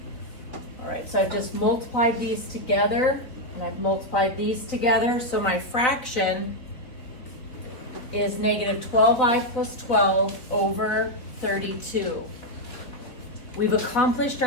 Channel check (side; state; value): right; late; 3.8 ms